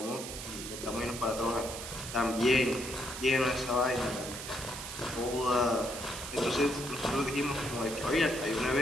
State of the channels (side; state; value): right; noise; hiss, 8 dB below the sound